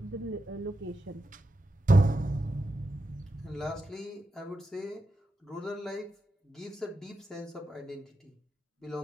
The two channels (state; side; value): normal; both; correlation 0.87